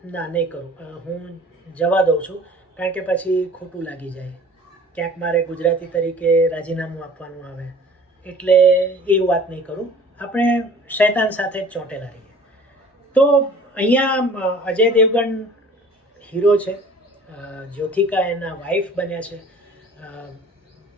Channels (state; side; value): normal; both; correlation 0.47